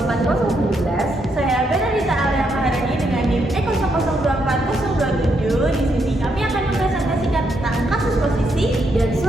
Saya Benedita Alia Maharani dengan NIM Eko 024 Di sini kami akan mempresentasikan tentang kasus posisi dan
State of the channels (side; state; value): both; normal; correlation 0.77